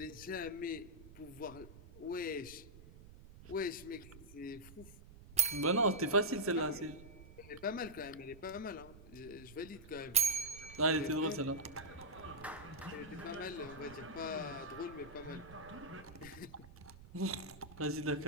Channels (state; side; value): noise; right; rumble, 18 dB below the sound